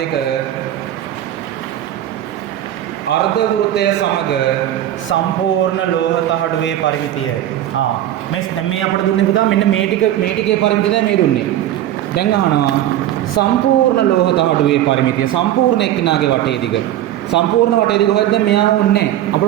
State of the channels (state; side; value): quieter; left; 12.5 dB